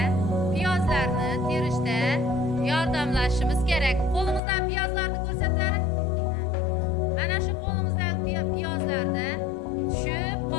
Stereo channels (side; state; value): right; drops out; at 4.4 s